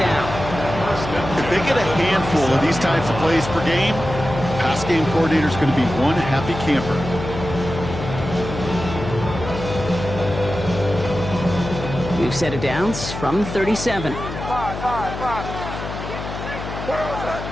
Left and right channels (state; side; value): noise; left; hum, 8 dB below the sound